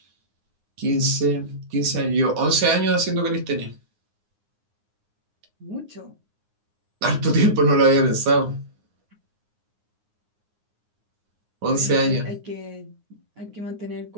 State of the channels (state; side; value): late; left; 9.6 ms